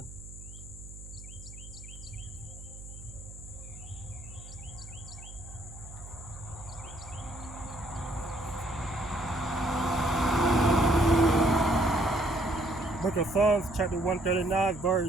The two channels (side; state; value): right; noise; hum, 15 dB below the sound